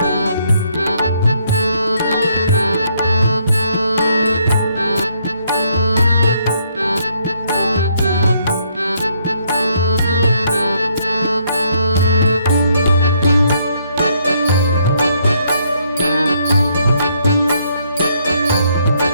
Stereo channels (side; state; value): both; inverted; correlation -0.71